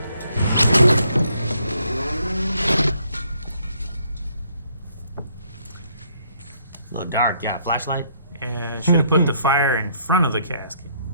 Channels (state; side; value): inverted; both; correlation -0.68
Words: A little dark, yeah. Flashlight? Yeah, should have put the fire in front of the casket.